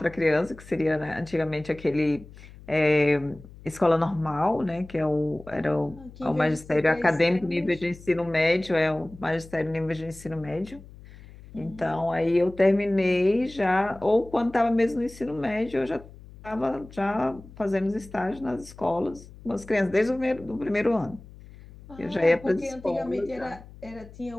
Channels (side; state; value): left; noise; hum, 19 dB below the sound